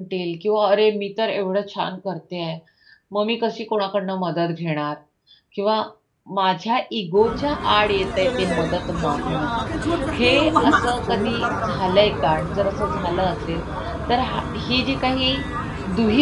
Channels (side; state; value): both; identical; correlation 1.00